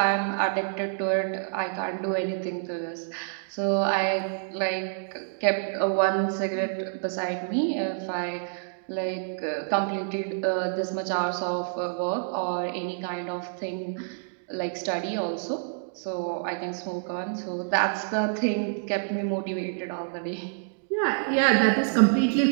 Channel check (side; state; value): left; silent; digital silence